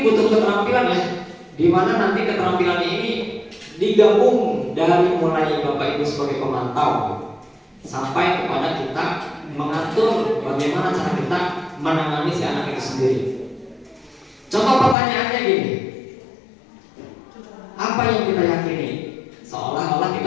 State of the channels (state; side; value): drops out; right; at 15.0 s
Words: butuh keterampilan ya, di mana nanti keterampilan ini digabung dari mulai Bapak Ibu sebagai pemantau sampai kepada kita mengatur bagaimana cara kita menangani si anak itu sendiri. Contoh pertanyaannya gini, apa yang kita yakini? Seolah-olah